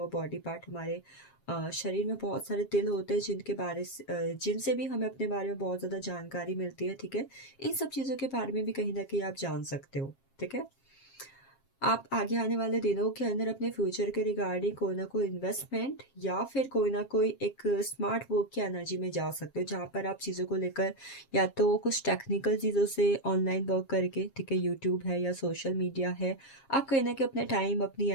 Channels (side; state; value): right; late; 7.4 ms